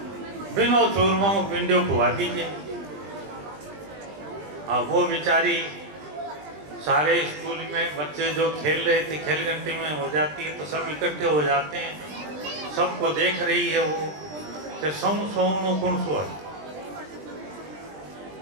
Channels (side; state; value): left; late; 20 ms